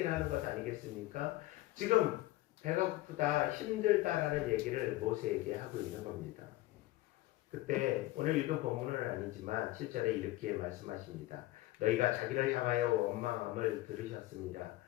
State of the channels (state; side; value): quieter; right; 17.5 dB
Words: 하는 것 아니겠습니까? 지금 배가 고프다, 힘들다라는 얘기를 모세에게 하고 있는 겁니다. 그때 오늘 읽은 본문은 아니지만 7절에 이렇게 말씀하십니다. 너희가 자기를 향하여 원망함을 들으셨습니다.